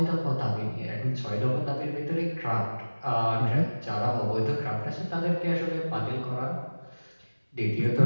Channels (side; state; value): both; inverted; correlation -1.00